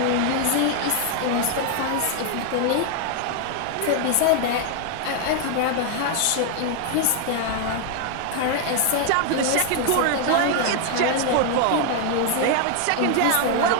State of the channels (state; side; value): different; both; correlation 0.00